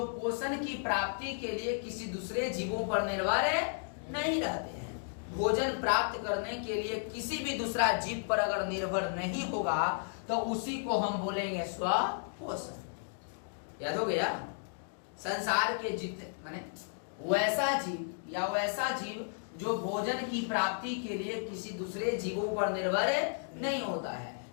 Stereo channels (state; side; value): silent; right; digital silence